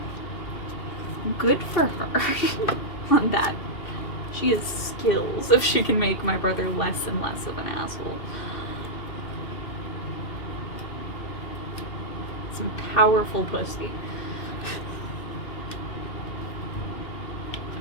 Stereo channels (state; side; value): late; right; 2.6 ms